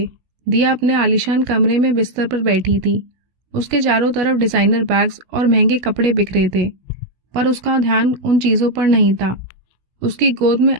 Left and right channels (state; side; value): late; left; 16 ms